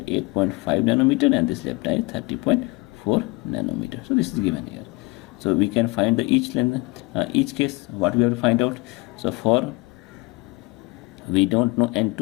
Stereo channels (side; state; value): right; quieter; 24.9 dB